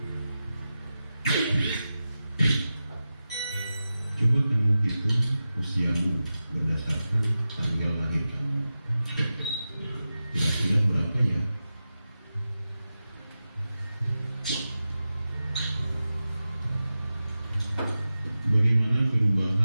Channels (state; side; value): inverted; both; correlation -0.93